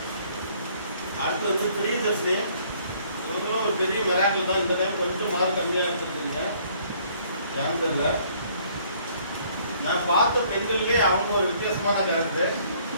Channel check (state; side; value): inverted; both; correlation -0.61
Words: அடுத்து வந்து பிரியதர்ஷினி, இவங்களும் ஒரு பெரிய மிராக்கிள் தான். இந்த டைம் கொஞ்சம் மார்க் கம்மியாக எடுத்துருக்கீங்க. ஏன்னு தெரியல. நான் பார்த்த பெண்கள்லே அவங்க ஒரு வித்தியாசமான கேரக்டர்.